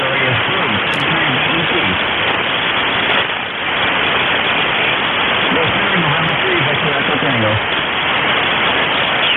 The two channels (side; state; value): both; identical; correlation 1.00